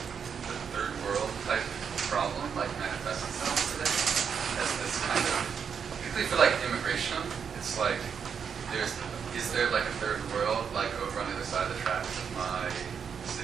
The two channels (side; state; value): left; quieter; 6.9 dB